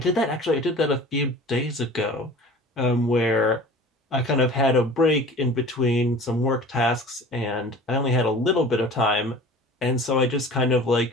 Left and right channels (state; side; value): normal; both; correlation 0.42